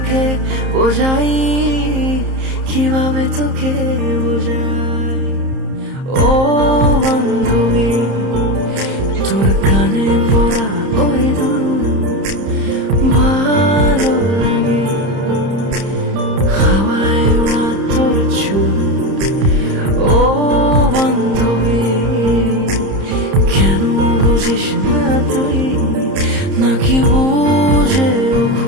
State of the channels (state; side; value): late; left; 30 ms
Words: বোঝাই, কিভাবে তোকে বোঝাই? ও বান্ধবী, তোর কানে পড়া ওই দুল ভালো লাগে, হাওয়ায় ওড়া তোর চুল। ও বান্ধবী, কেন বুঝিস না তুই, নাকি বুঝেও